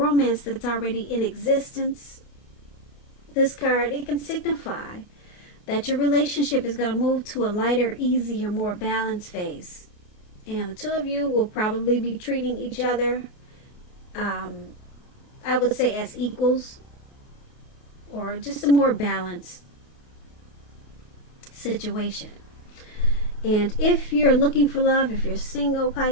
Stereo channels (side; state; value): right; late; 28 ms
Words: that's already in existence. This card, it can signify that your relationship is going to move to a lighter, easier, more balanced phase. And the two of you will probably be treating each other, I would say, as equals, or just a more balanced situation. And if you're looking for love, if you're single,